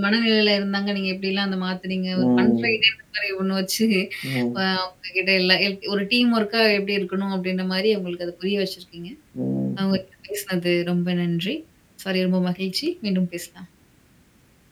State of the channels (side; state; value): both; identical; correlation 1.00